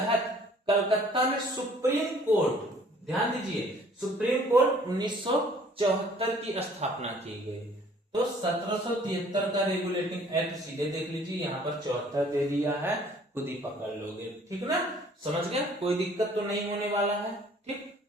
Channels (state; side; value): normal; both; correlation 0.56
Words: कलकत्ता में सुप्रीम कोर्ट, ध्यान दीजिए, सुप्रीम कोर्ट 1974 की स्थापना की गई? तो 1773 का रेगुलेटिंग एक्ट, सीधे देख लीजिए, यहाँ पर 74 दे दिया है, खुद ही पकड़ लोगे। ठीक ना, समझ गया, कोई दिक्कत तो नहीं होने वाला है। ठीक,